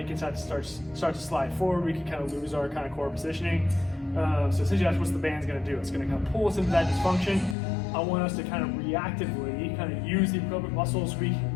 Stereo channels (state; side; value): drops out; right; at 7.6 s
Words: can start to slide forward. We can kind of lose our kind of core positioning. So essentially that's what the band's going to do. It's going to kind of pull us into that dysfunction. I want us to kind of reactively kind of use the appropriate muscles we